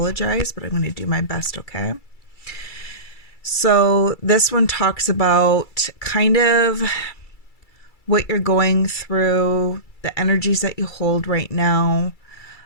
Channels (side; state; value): right; late; 2.3 ms